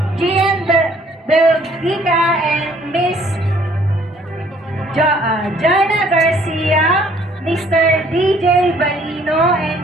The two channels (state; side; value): normal; both; correlation 0.60